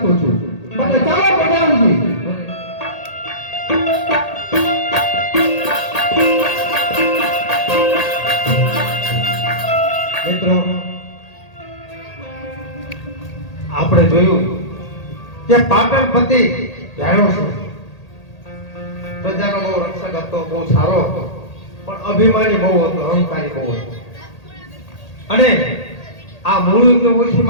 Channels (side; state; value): right; late; 1.8 ms